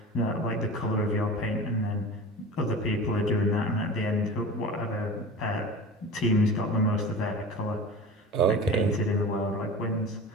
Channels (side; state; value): both; normal; correlation 0.34